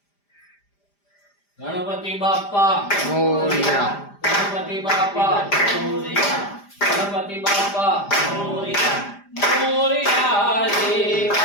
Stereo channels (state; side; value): late; right; 5.0 ms